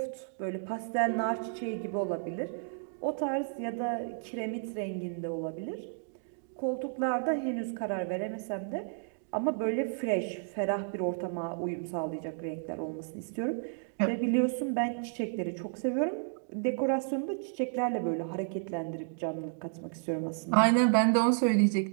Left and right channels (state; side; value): silent; left; digital silence